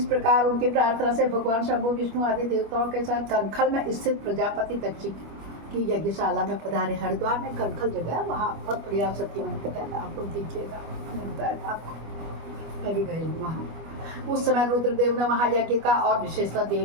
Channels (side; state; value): left; late; 25 ms